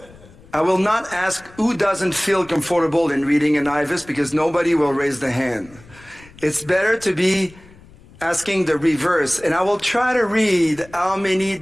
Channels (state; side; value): noise; left; rumble, 23 dB below the sound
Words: I will not ask who doesn't feel comfortable in reading an IVUS, because nobody will raise the hand. It's better to be asking the reverse, and I will try to read how many